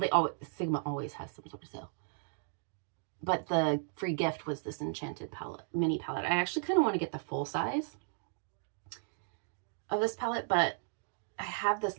Sigma always has some sort of sale. But the free gift was this Enchanted palette, mini palette. I actually kind of want to get the full size of this palette, but I have this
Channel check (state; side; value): silent; left; digital silence